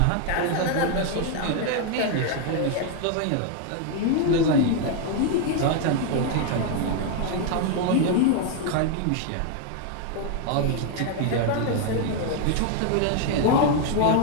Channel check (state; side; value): different; both; correlation 0.01